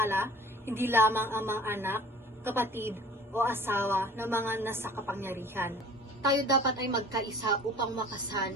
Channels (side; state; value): both; normal; correlation 0.47